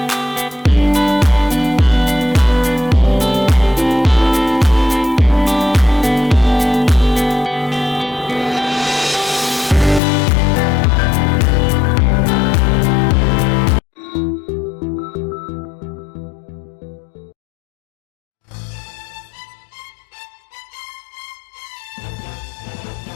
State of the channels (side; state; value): right; drops out; at 10.0 s